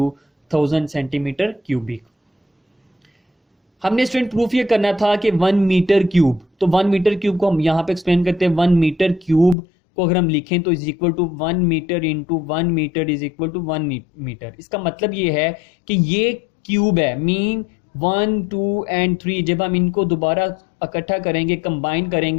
1000 centimetre cubic. हमने स्टूडेंट प्रूफ ये करना था कि 1 मीटर क्यूब, तो 1 मीटर क्यूब को हम यहाँ पे एक्सप्लेन करते हैं। 1 मीटर क्यूब को अगर हम लिखें तो is equal to 1 metre into 1 metre is equal to 1 metre. इसका मतलब ये है कि ये क्यूब है, मीन 1 2 एंड 3 जब हम इनको दोबारा इकट्ठा करेंगे कंबाइन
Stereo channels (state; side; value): drops out; right; at 9.6 s